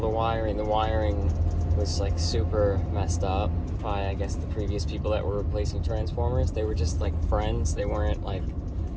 the wiring. The wiring was like super messed up by, I guess, the previous people that were replacing transformers. They were just like friends, they weren't like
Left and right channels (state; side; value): identical; both; correlation 1.00